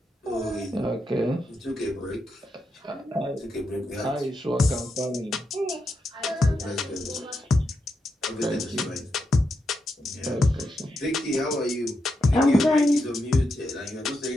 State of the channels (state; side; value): normal; both; correlation 0.84